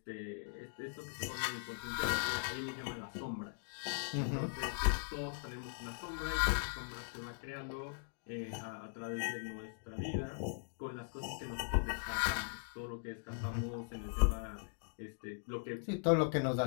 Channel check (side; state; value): right; silent; digital silence